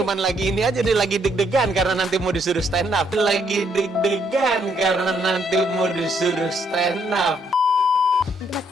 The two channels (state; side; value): normal; both; correlation 0.72